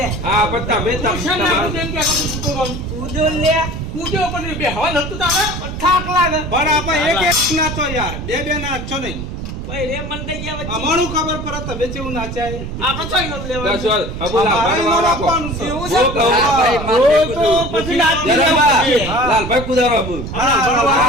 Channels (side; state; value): right; noise; rumble, 7 dB below the sound